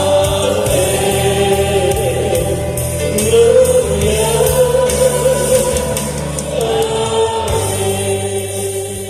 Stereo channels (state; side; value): identical; both; correlation 1.00